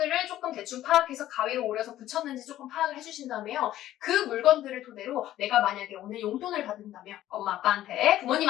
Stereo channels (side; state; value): right; quieter; 13.5 dB